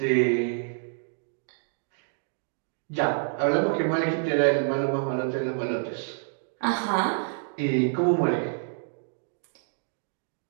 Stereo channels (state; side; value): silent; left; digital silence